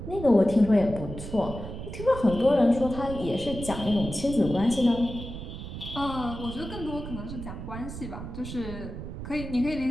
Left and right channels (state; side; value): noise; right; rumble, 9 dB below the sound